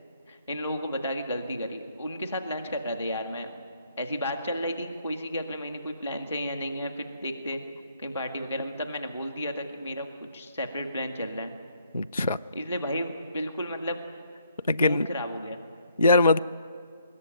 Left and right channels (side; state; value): both; inverted; correlation -0.69